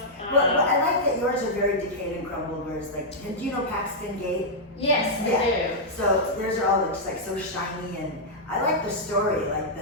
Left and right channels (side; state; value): both; normal; correlation -0.07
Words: Well, I like that yours are very decayed and crumbled, whereas like, do you know Paxton Gate? Yes, I Yeah. do. So theirs are all just like so shiny, and I like the story, like